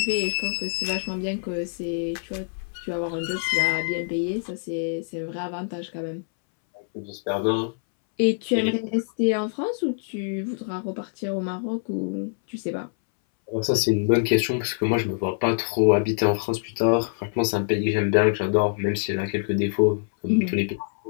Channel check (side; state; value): right; silent; 62 dB below the other